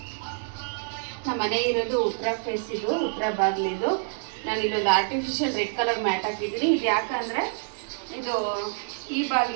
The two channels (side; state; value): left; silent; digital silence